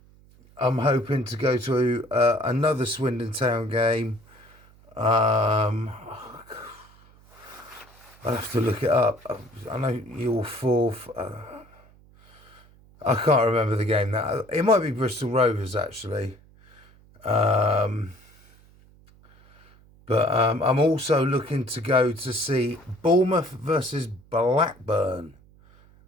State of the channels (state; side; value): noise; right; hum, 27 dB below the sound